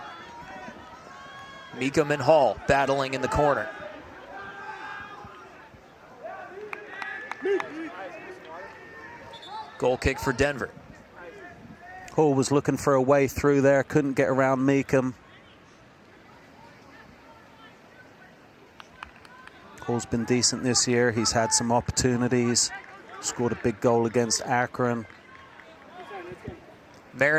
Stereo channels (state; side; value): identical; both; correlation 1.00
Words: Meekum and Hall battling in the corner. Goal kick for Denver. Hall was looking for a way through there, couldn't get around Meekum. Paul's been decent this year. He's had some opportunities. Scored a big goal against Akron.